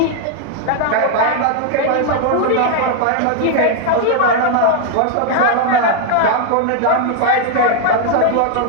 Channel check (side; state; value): both; different; correlation 0.00